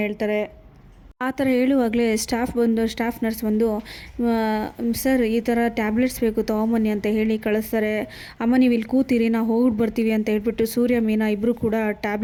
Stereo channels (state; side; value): identical; both; correlation 1.00